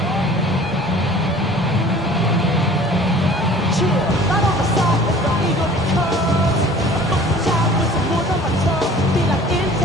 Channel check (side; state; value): both; normal; correlation 0.48